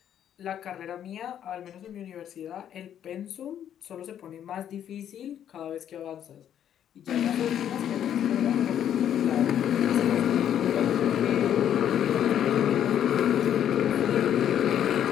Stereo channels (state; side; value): quieter; right; 9.9 dB